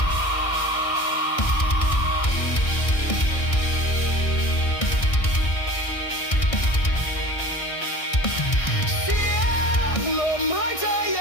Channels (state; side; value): late; right; 1.6 ms